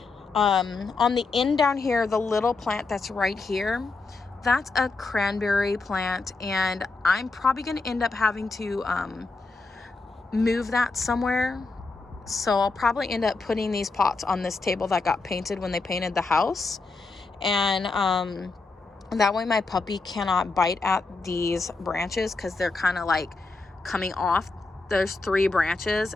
On the end down here, the little plant that's right here, that's a cranberry plant, and I'm probably going to end up having to move that somewhere. So I'll probably end up putting these pots on this table that got painted when they painted the house. And that way my puppy cannot bite at these branches because they're kind of like coming off. There's 3 branches,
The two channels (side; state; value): right; quieter; 3.8 dB